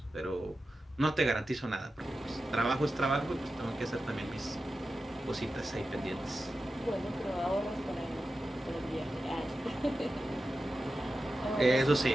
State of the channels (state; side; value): normal; both; correlation 0.92